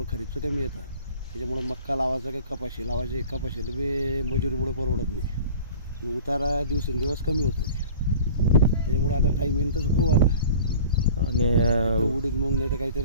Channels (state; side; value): inverted; both; correlation -0.43